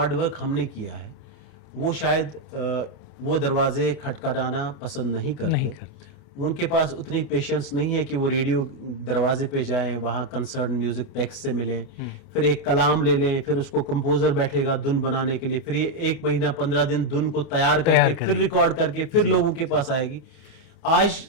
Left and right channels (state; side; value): late; right; 29 ms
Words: वर्क हमने किया है वो शायद वो दरवाजे खटखटाना पसंद नहीं करते। उनके पास उतनी पेशेंस नहीं है कि वो रेडियो दरवाजे पे जाएं, वहाँ कंसर्न म्यूज़िक पैक्स से मिलें, फिर एक कलाम ले लें, फिर उसको कंपोज़र बैठेगा धुन बनाने के लिए, फिर ये 1 महीना 15 दिन धुन को तैयार करके फिर रिकॉर्ड करके फिर लोगों के पास आएगी। आज